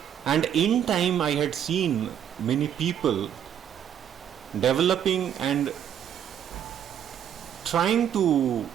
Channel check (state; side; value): quieter; left; 9.5 dB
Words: And in time I had seen many people developing and trying